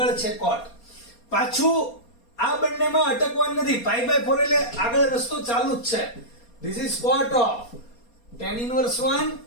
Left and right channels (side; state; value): right; late; 4.2 ms